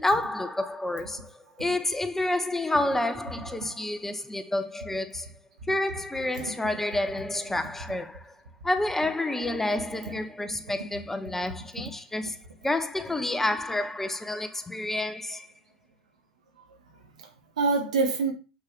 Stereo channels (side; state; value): both; normal; correlation 0.68